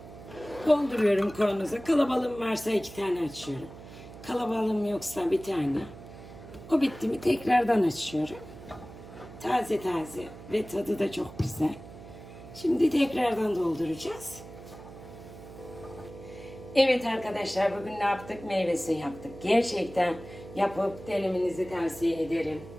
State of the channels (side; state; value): right; noise; hum, 16 dB below the sound